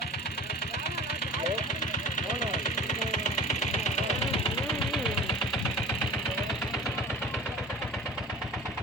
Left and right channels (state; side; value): normal; both; correlation 0.41